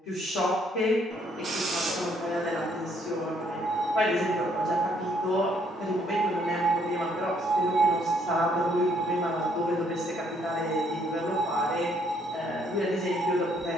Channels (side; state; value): both; normal; correlation 0.68